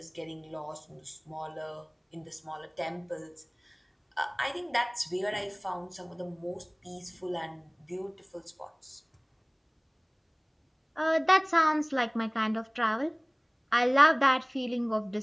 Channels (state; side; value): identical; both; correlation 1.00